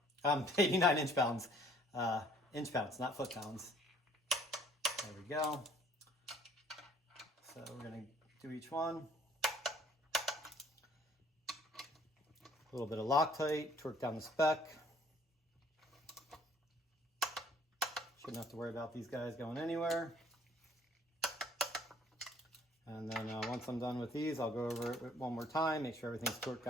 89 inch-pounds. Inch-pounds, not foot-pounds. There we go. So we're going to do each one. A little bit of Loctite, torque down the spec. Shouldn't have to worry about these guys going anywhere. And then once I'm done with these, I'll go over it one more time, make sure everything's torqued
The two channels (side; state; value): both; normal; correlation 0.58